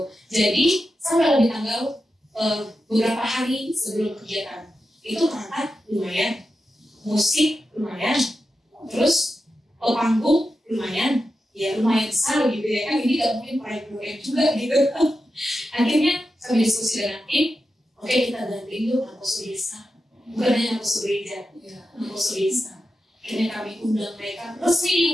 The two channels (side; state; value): both; normal; correlation 0.90